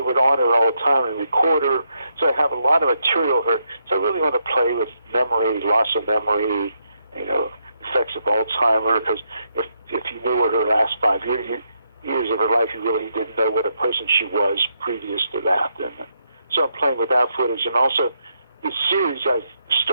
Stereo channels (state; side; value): inverted; both; correlation -0.79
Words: would honor her all the time and record her. So I have a lot of material of her. So I really want to play with memory, loss of memory, effects of Alzheimer. Because if you knew her last 5 years of her life, you really didn't know what a person she was previous to that. And so I'm playing with that footage, and also the series I